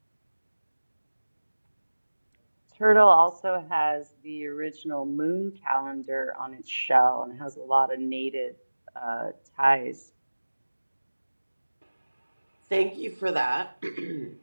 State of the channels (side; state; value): both; inverted; correlation -1.00